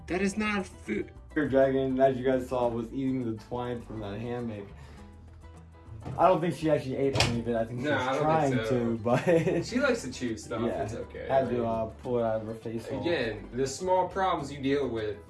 That is not food. Her dragon, as you guys saw, was eating the twine from that hammock. I don't think she actually ate any of it. I think she was trying to, but she likes to chew stuff. yeah, It's okay. had to pull it out of her face hole. Again, the small problems you deal with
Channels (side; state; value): both; identical; correlation 1.00